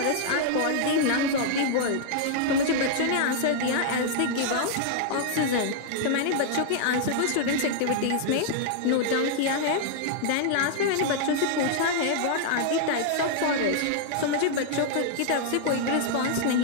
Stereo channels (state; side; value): different; both; correlation -0.01